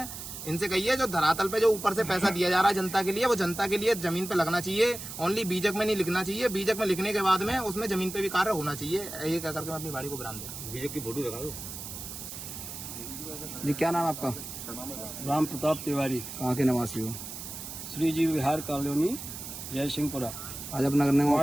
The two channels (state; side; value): noise; right; hiss, 9 dB below the sound